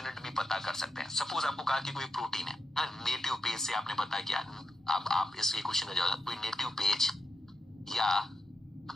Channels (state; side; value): normal; both; correlation 0.85